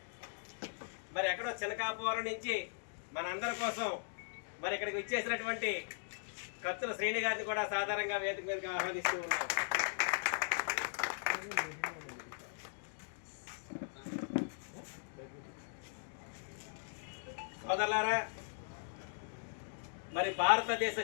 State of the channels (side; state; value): right; silent; digital silence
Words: మరి ఎక్కడో చినకాపురం నుంచి మనందరి కోసం మరి ఇక్కడికి వచ్చేసినటువంటి కత్తుల శ్రేణి గారిని కూడా సాధారణంగా వేదిక మీదకి ఆహ్వానిస్తూ ఉన్నాం. సోదరులారా, మరి భారతదేశ